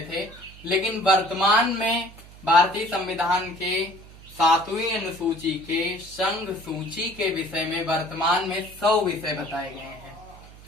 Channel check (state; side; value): noise; right; hum, 20 dB below the sound